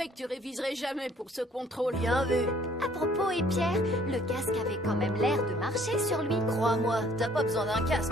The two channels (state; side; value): normal; both; correlation 0.58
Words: que tu réviserais jamais pour ce contrôle. Bien vu. À propos, et Pierre, le casque avait quand même l'air de marcher sur lui. Crois-moi, t'as pas besoin d'un